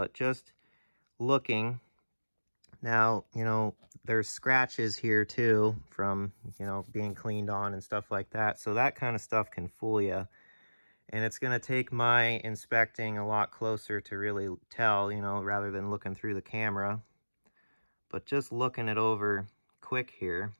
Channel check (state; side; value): inverted; both; correlation -1.00